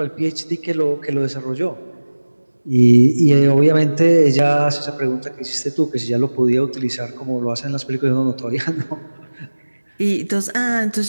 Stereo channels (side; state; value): both; inverted; correlation -1.00